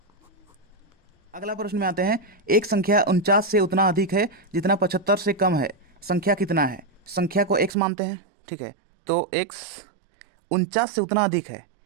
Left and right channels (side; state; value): left; drops out; at 7.7 s